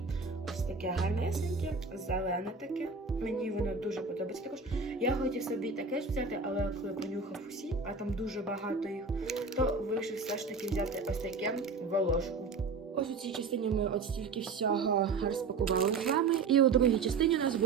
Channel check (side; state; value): left; quieter; 4.5 dB